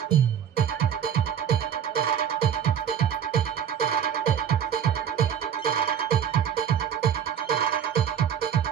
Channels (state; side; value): quieter; left; 8.7 dB